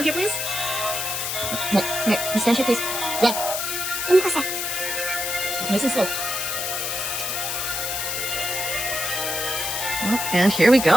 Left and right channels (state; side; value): noise; left; hiss, 2 dB below the sound